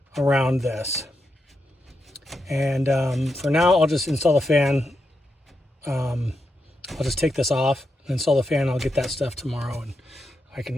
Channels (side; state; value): both; normal; correlation 0.85